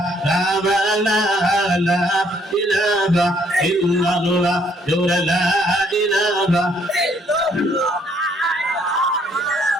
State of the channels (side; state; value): both; normal; correlation 0.66